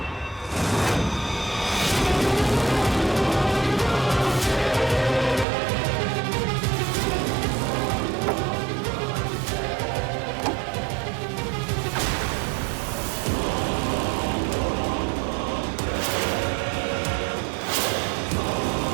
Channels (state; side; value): drops out; left; at 5.5 s